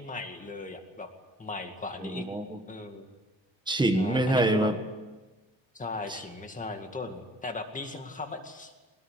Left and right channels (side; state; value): both; normal; correlation 0.55